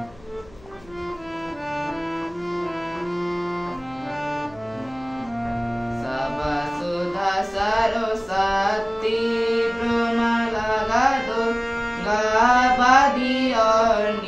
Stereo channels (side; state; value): left; noise; hum, 25 dB below the sound